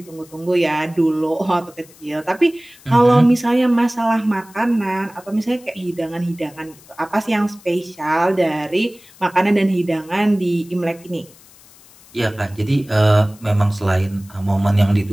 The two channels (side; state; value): left; noise; hiss, 25 dB below the sound